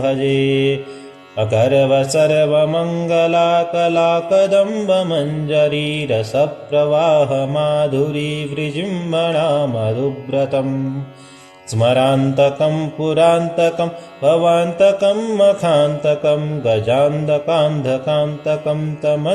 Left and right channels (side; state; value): both; identical; correlation 1.00